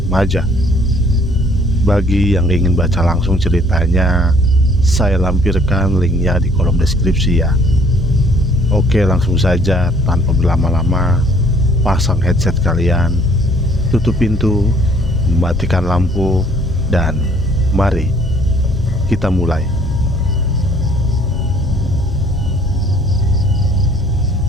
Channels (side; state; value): both; normal; correlation 0.60